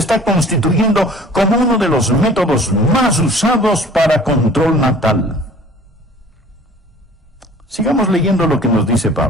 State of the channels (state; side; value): normal; both; correlation 0.48